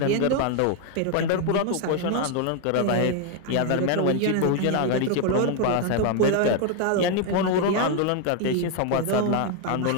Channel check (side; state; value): both; different; correlation 0.00